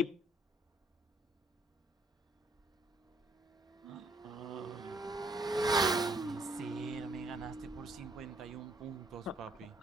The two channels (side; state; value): both; normal; correlation 0.67